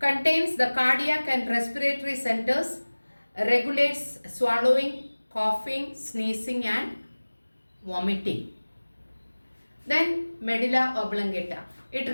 the cardiac and respiratory centers, regulates swallowing, coughing, sneezing and vomiting. Then medulla oblongata. It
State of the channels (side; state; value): both; inverted; correlation -1.00